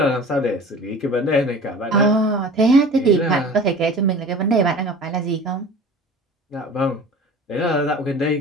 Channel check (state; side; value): normal; both; correlation 0.40